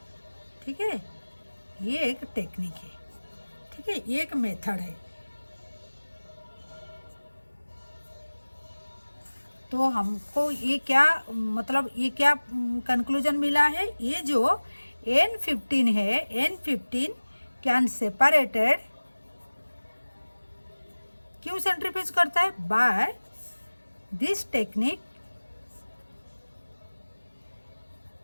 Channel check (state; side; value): inverted; both; correlation -1.00